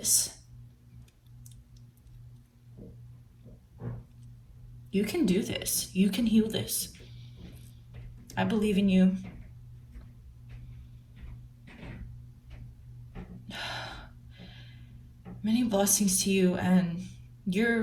You can do this. You can heal this. I believe in you. Many blessings to you, and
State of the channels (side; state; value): both; identical; correlation 1.00